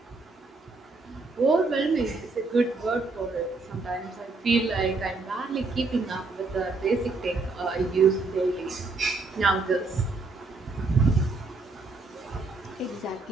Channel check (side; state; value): left; quieter; 3.6 dB